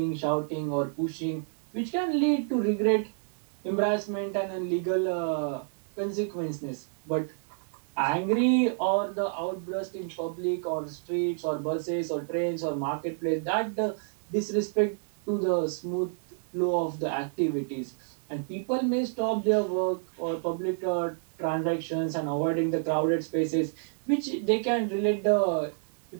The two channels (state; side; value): silent; left; digital silence